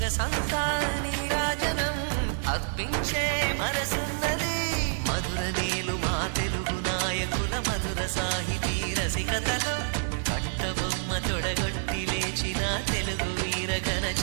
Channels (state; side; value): silent; left; digital silence